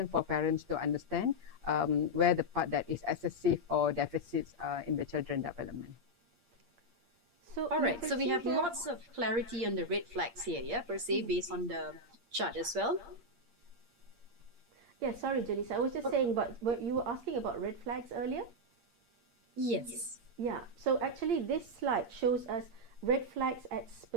for parents to understand where the part that is excessive or deficits in the children development. So all right, so we have lots of clarity on the red flags here, per se, based on the chart as well. Yeah, sorry, Janice. I was just saying, but you were asking about red flags earlier? Yes. Yeah, so actually this slide shows us red flags at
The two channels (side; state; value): left; late; 8.6 ms